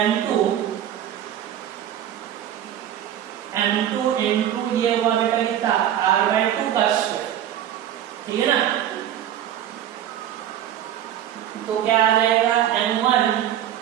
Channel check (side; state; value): left; quieter; 11.0 dB